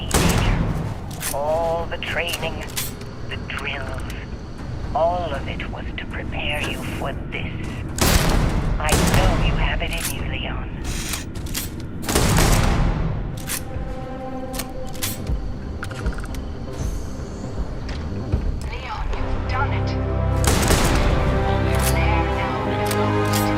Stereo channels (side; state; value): both; identical; correlation 1.00